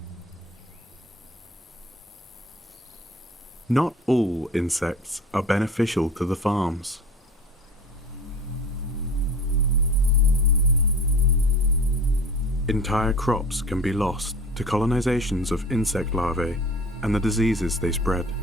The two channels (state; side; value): normal; both; correlation 0.41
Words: Not all insects are beneficial to the farms. Entire crops can be lost to colonizations of insect larvae and the diseases they spread.